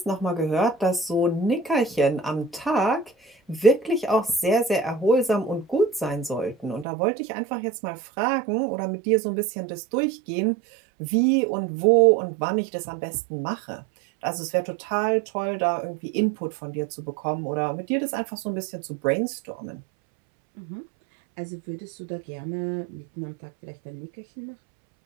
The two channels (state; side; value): drops out; left; at 6.9 s